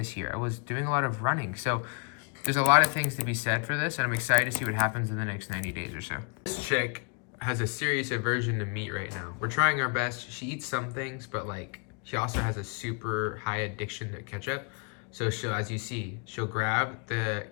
year. I was doing a lot of running. So there's a lot of things to be said for this, and I'm excited to see what happens in the next 90 days or so. This chick has a serious aversion to meat right now. We're trying our best. She eats some things, but like she also has a super high addiction to ketchup. So she'll, as you see, she'll grab the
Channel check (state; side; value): quieter; right; 35.3 dB